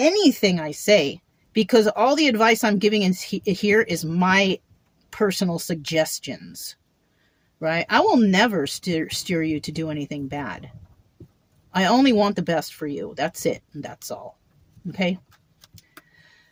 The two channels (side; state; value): both; identical; correlation 1.00